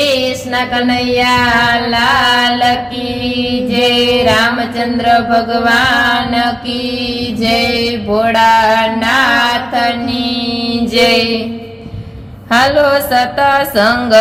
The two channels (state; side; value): identical; both; correlation 1.00